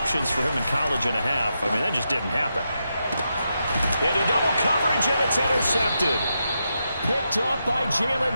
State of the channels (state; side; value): inverted; both; correlation -0.85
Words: for him in college and a half. I mean, that just didn't happen. Into double coverage, and it's intercepted. Picked off by Jalen